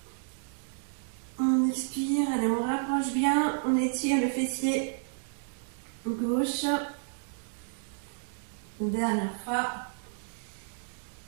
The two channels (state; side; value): silent; left; digital silence